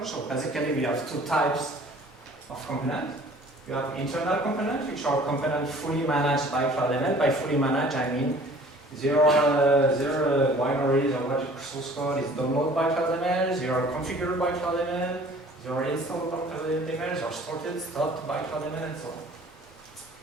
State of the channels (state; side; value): normal; both; correlation 0.51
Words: So basically we have two types of component. You have internal components, which are components fully managed by CloudML. By fully managed, I mean their binaries or what source code is downloaded by CloudML, they are configured by CloudML, they are installed by CloudML, they are sorted, stopped by CloudML, and so on.